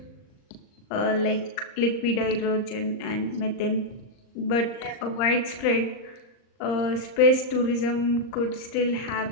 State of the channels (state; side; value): late; right; 39 ms